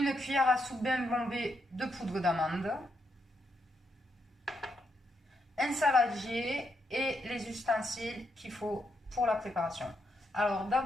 cuillère à soupe bien bombée de poudre d'amande, un saladier et les ustensiles qu'il faut pour la préparation. Alors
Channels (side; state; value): both; normal; correlation 0.79